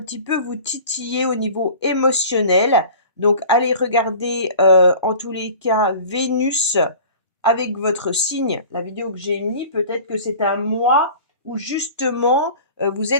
petit peu vous titiller au niveau émotionnel. Donc, allez regarder en tous les cas Vénus avec votre signe, la vidéo que j'ai mis. Peut-être que c'est un mois où justement vous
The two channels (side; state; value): both; inverted; correlation -0.42